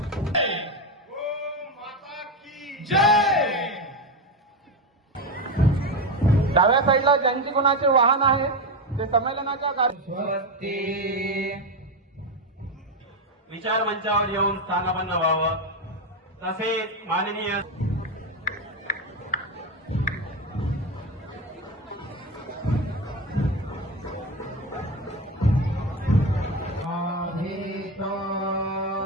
डाव्या साईडला ज्यांची कोणाचे वाहन आहे ते संमेलनाच्या विचार मंचावर येऊन स्थानापन्न व्हावं। तसेच माननीय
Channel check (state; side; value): normal; both; correlation 0.15